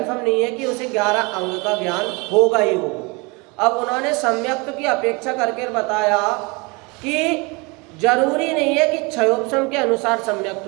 नहीं है कि उसे 11 अंग का ज्ञान होगा ही होगा। अब उन्होंने सम्यक्त की अपेक्षा करके बताया कि जरूरी नहीं है कि क्षयोपशम के अनुसार सम्यक्त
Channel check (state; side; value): quieter; left; 27.9 dB